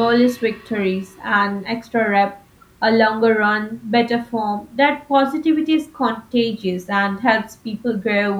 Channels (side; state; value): both; identical; correlation 1.00